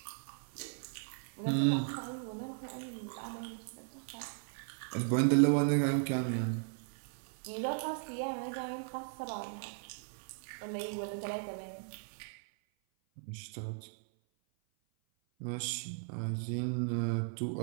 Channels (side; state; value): left; silent; 53 dB below the other